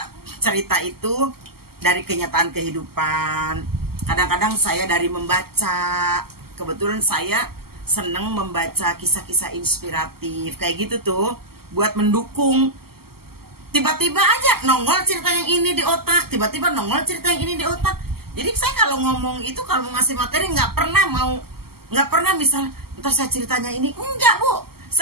cerita itu dari kenyataan kehidupan. Kadang-kadang saya dari membaca. Kebetulan saya seneng membaca kisah-kisah inspiratif kayak gitu tuh, buat mendukung. Tiba-tiba aja nongol cerita yang ini di otak, tiba-tiba nongol cerita yang ini di otak. Jadi saya kalau ngomong itu, kalau mau ngasih materi nggak pernah misal ntar saya ceritanya ini, enggak Bu,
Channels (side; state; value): left; late; 0.95 ms